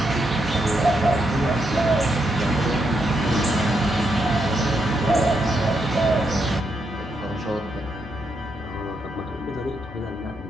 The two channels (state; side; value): normal; both; correlation 0.80